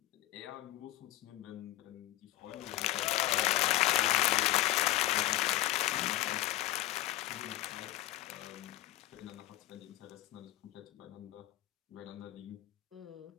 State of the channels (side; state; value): right; quieter; 16.6 dB